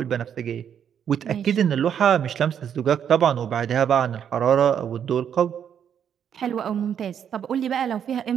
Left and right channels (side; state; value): left; quieter; 8.6 dB